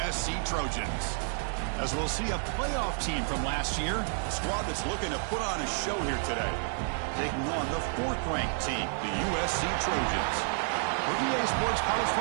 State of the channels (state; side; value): silent; left; 58 dB below the other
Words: Trojans. As we'll see a playoff team from last year, a squad that's looking to put on a show here today. Taking on the fourth-ranked team, the USC Trojans. For EA Sports College